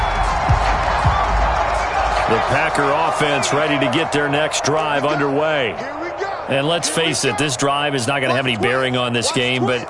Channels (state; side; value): identical; both; correlation 1.00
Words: The Packer offense ready to get their next drive underway. Here we go. And let's face it, this drive is not going to have any bearing on this game, but